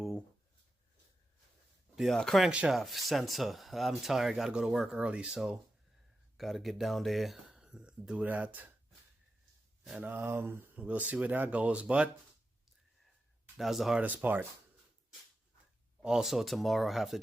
the crankshaft sensor. I'm tired, gotta go to work early, so gotta get down there, do that. And we'll see where that goes, but that was the hardest part. Also tomorrow I have to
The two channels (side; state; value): both; normal; correlation 0.90